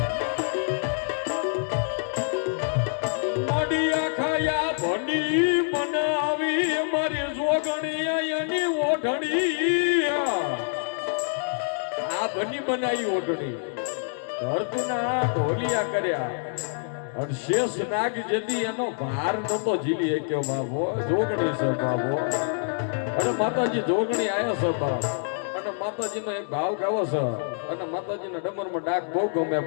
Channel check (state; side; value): silent; right; 61 dB below the other